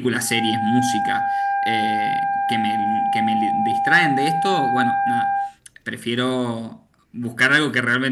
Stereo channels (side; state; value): both; identical; correlation 1.00